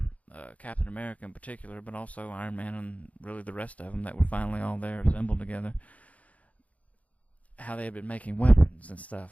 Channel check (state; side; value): late; right; 0.069 ms